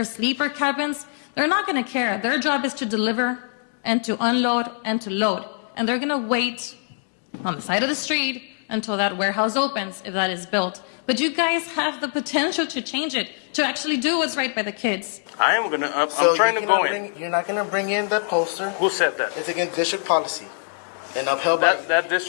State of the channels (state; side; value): silent; right; digital silence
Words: sleeper cabins. They're not going to care. Their job is to deliver and to unload and to load. And they're going to wait on the side of the street until that warehouse opens, if that is built. But you guys have the potential to change it, to actually do what's right by the kids. I am gonna, I'm So trying you to go cannot in. You're not going to bring in that poster. Who said that? It's against district policy and upheld by. That